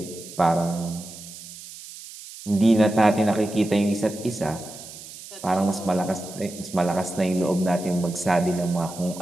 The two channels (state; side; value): noise; right; hiss, 15 dB below the sound